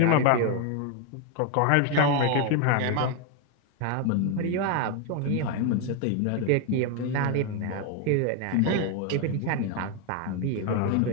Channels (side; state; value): both; different; correlation 0.01